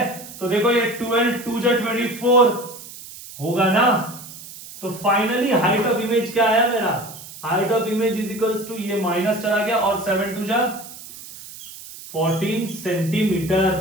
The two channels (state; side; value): noise; right; hiss, 15 dB below the sound